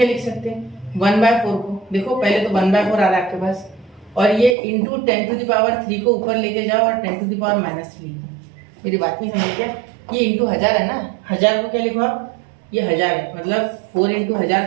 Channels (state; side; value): drops out; left; at 4.5 s